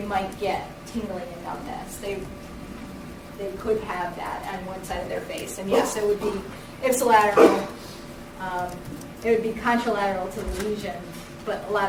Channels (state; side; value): identical; both; correlation 1.00